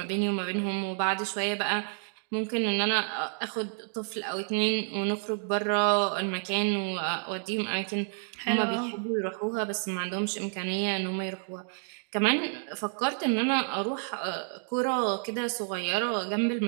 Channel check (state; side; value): silent; left; 56 dB below the other